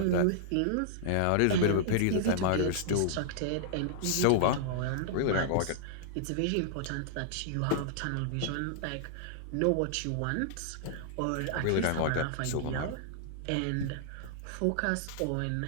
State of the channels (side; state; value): both; different; correlation -0.01